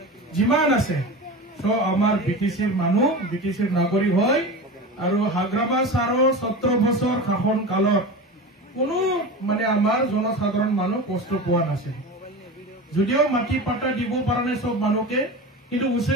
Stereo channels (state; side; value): normal; both; correlation 0.28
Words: যিমান আছে সব আমার বিটিসির মানুষ বিটিসির নাগরিক হয় আৰু হাগ্ৰামা ছাৰৰ 17 বছৰ শাসন কালত কোনো মানে আমাৰ জনসাধাৰণ মানুহ কষ্ট পোৱা নাছিল যদিও মাটি পাট্টা দিব পৰা নাই সব মানুহকে কিন্তু